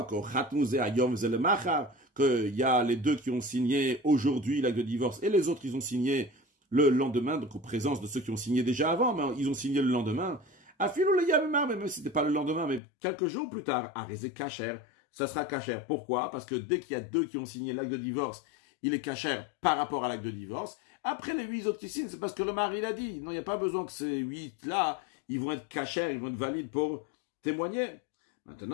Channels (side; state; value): right; drops out; at 12.8 s